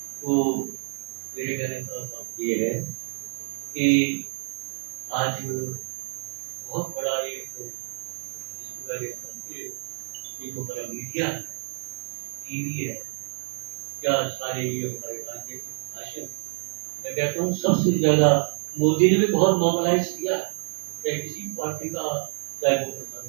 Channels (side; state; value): left; silent; digital silence